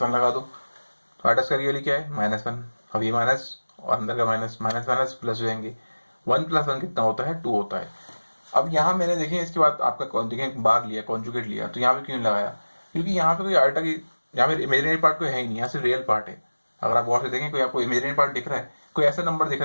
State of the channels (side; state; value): both; inverted; correlation -1.00